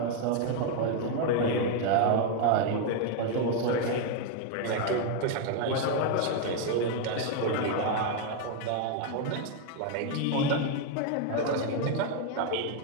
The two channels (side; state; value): both; different; correlation 0.01